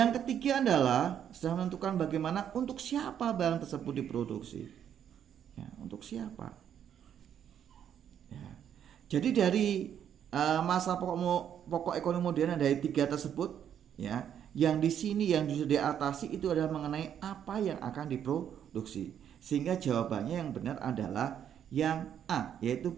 ketiga adalah setelah menentukan bagaimana, untuk siapa barang tersebut diproduksi ya, untuk siapa ya. Jadi dari masa pokok ekonomi modern dari 3 tersebut ya, yang di sini yang bisa diatasi itu adalah mengenai apa yang akan diproduksi. Sehingga jawabannya yang benar adalah yang A, yaitu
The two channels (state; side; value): quieter; left; 9.3 dB